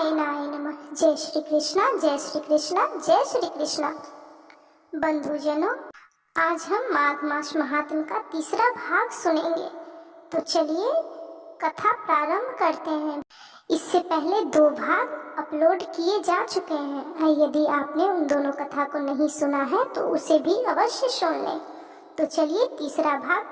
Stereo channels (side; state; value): both; identical; correlation 1.00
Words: नमः। जय श्री कृष्णा, जय श्री कृष्णा, जय श्री कृष्णा। बंधुजनों, आज हम माघ मास महात्म्य का तीसरा भाग सुनेंगे। तो चलिए कथा प्रारंभ करते हैं। इससे पहले 2 भाग अपलोड किए जा चुके हैं। यदि आपने उन दोनों कथा को नहीं सुना है तो उसे भी अवश्य सुन लें। तो चलिए तीसरा भाग